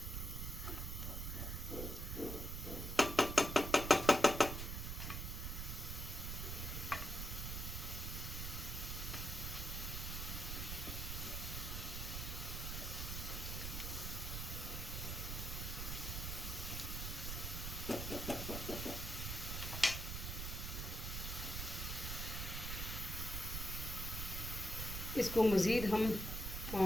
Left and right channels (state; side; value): noise; right; rumble, 3 dB below the sound